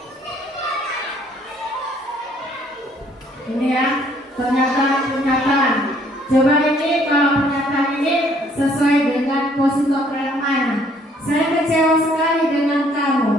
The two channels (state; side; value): normal; both; correlation 0.63